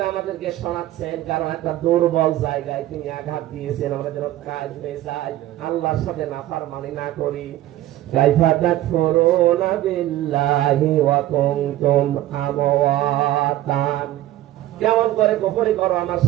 আমাদেরকে শোনাচ্ছেন, কারণ একটা দুর্বল জায়গায় তিনি আঘাত দিয়েছেন, আমরা যেন কাজ হয়ে যাই, আল্লাহর সাথে নাফরমানি না করি। কাইফা তাকফুরুনা বিল্লাহি ওয়া কুনতুম আমওয়াতান, কেমন করে কুফরি করো আমার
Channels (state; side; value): quieter; left; 14.7 dB